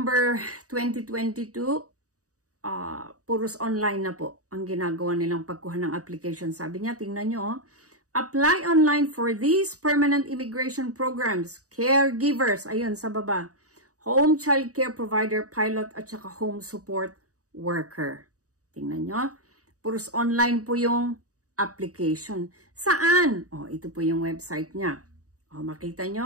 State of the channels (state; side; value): late; left; 0.66 ms